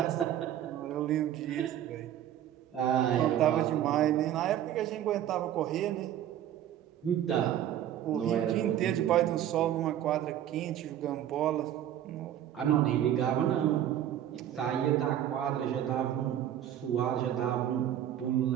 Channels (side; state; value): left; quieter; 11.2 dB